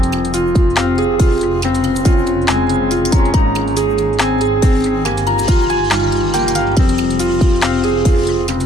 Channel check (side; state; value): both; normal; correlation 0.68